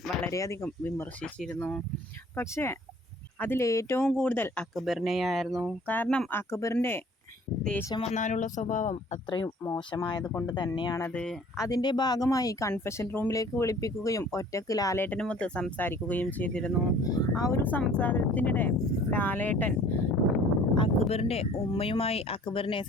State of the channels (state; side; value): normal; both; correlation 0.52